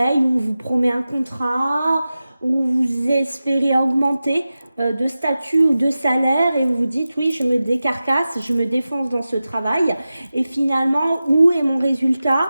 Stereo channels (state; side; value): inverted; both; correlation -0.95